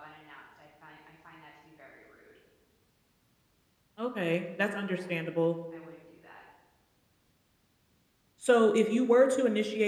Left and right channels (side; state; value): both; identical; correlation 1.00